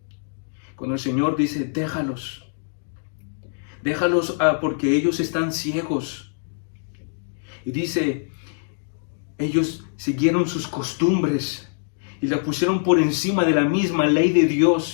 Cuando el Señor dice, déjalos porque ellos están ciegos. Y dice, ellos siguieron sus costumbres y la pusieron por encima de la misma ley de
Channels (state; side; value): silent; right; digital silence